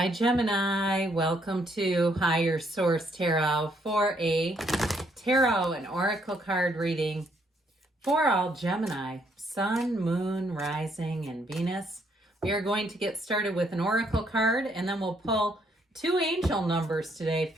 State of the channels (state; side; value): normal; both; correlation 0.71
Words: Gemini, welcome to Higher Source Tarot for a tarot and oracle card reading for all Gemini, Sun, Moon, Rising, and Venus. We are going to get started with an oracle card and then we'll pull two angel numbers today